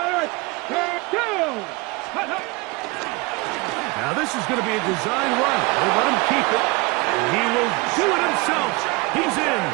Now this is going to be a design run. We'll let him keep it. And he will do it himself. He's in.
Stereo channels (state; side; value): quieter; left; 25.7 dB